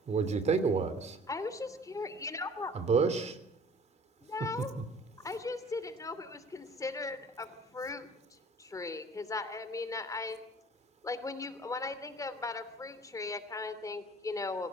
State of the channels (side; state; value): both; normal; correlation 0.49